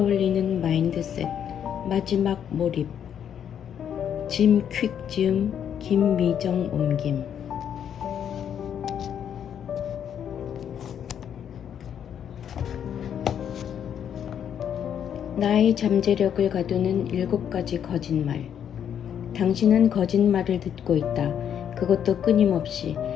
마인드셋. 마지막 몰입. 짐 퀵 지음 김미정 옮김. 나의 잠재력을 가두는 7가지 거짓말. 당신은 거짓말을 듣고 있다. 그것도 끊임없이.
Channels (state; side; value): quieter; right; 8.9 dB